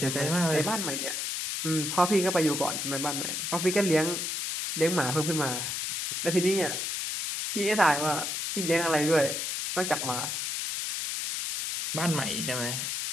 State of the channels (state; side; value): noise; left; hiss, 2 dB below the sound